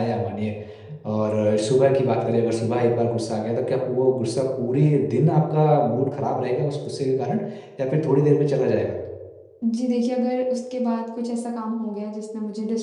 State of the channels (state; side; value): identical; both; correlation 1.00